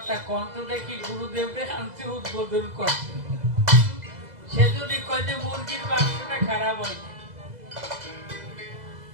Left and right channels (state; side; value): late; left; 2.0 ms